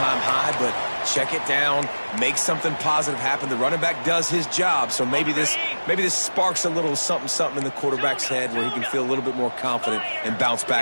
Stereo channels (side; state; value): both; inverted; correlation -1.00